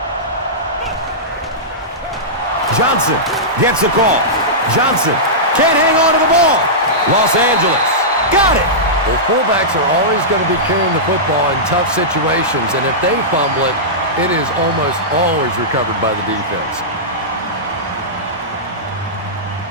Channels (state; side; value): normal; both; correlation -0.14